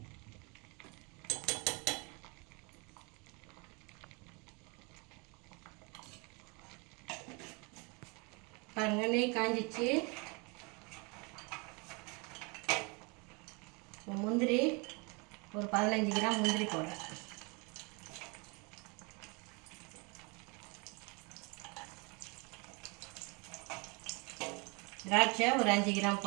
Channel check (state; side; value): quieter; left; 30.2 dB